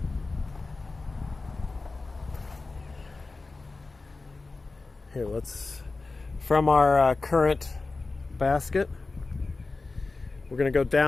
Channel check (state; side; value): quieter; right; 3.7 dB